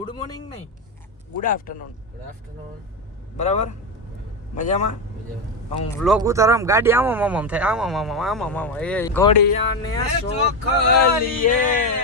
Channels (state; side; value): normal; both; correlation 0.12